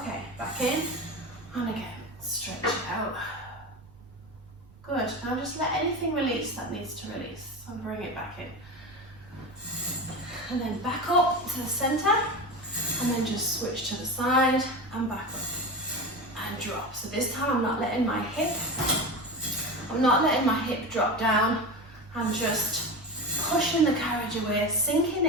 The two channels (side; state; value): right; noise; rumble, 25 dB below the sound